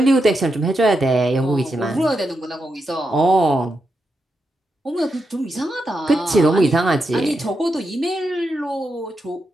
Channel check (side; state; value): both; normal; correlation 0.85